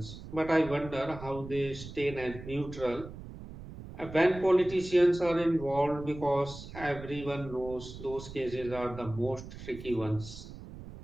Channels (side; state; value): right; noise; rumble, 13 dB below the sound